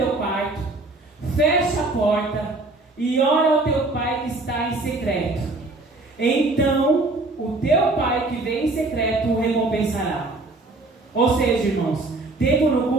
quarto, fecha a porta e ora ao teu pai que está em secreto. Então o teu pai que vem em secreto o recompensará. Ou seja, irmãos, tempo no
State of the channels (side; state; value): left; quieter; 3.1 dB